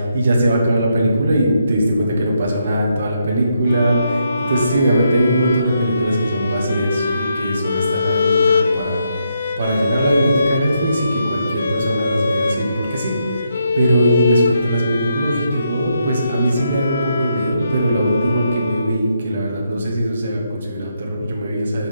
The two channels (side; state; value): both; inverted; correlation -0.79